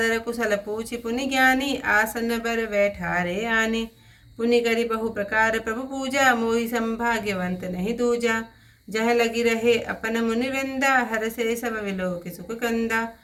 कुशल पूछि पुनि ज्ञानी, आसन बर बैठारे आने। पुनि करि बहु प्रकार प्रभु पूजा, मोहि संभाग्यवंत नहीं दूजा। जह लगी रहे अपन मुनि वृंदा, हर से सब विलोक सुख कंदा।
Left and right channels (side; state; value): both; identical; correlation 1.00